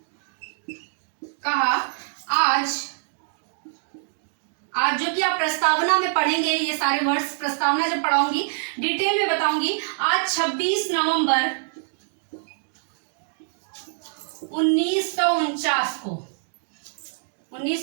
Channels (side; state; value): left; silent; digital silence